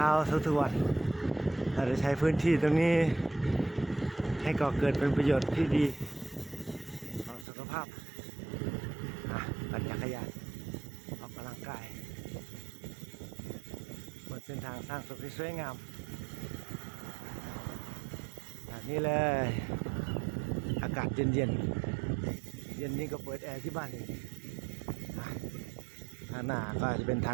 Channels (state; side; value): drops out; left; at 7.5 s